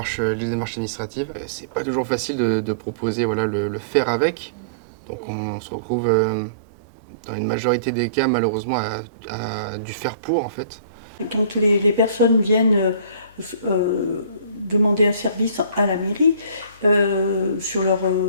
administratives. C'est pas toujours facile de proposer le faire avec. Donc on se retrouve dans une majorité des cas malheureusement à du faire pour en fait. Quand les personnes viennent demander un service à la mairie sur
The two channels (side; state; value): both; inverted; correlation -0.44